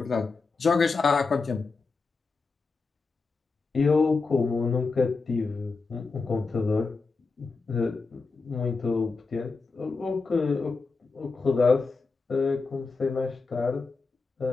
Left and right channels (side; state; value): right; quieter; 4.2 dB